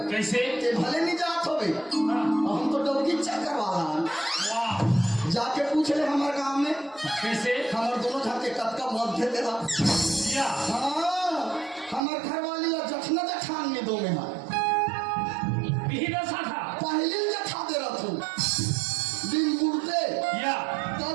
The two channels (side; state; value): left; drops out; at 12.0 s